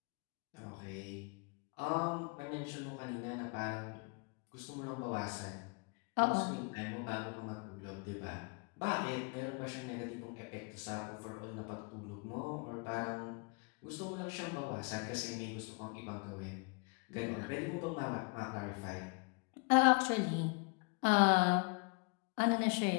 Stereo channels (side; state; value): right; quieter; 33.6 dB